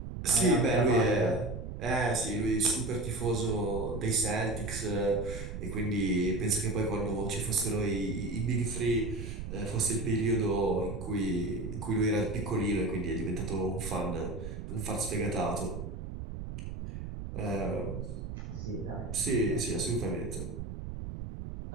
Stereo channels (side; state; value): right; noise; rumble, 7 dB below the sound